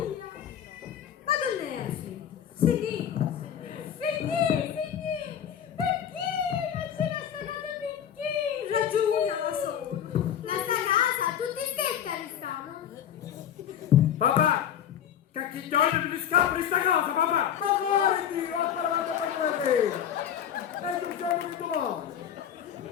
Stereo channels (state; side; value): quieter; right; 9.4 dB